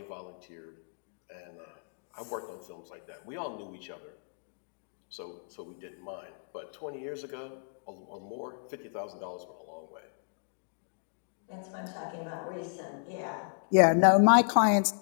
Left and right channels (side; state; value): right; silent; digital silence